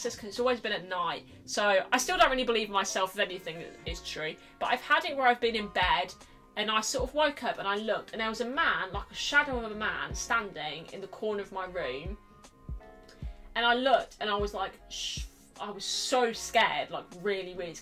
because it's always been at night. So I still don't really believe myself if anything is true. But I've had it where I've been in bed and I sort of woke up and I looked and there was a man, like a shadow of a man, standing in the corner of my room. And I looked and I was like, shh. I was so scared, like really, really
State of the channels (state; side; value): identical; both; correlation 1.00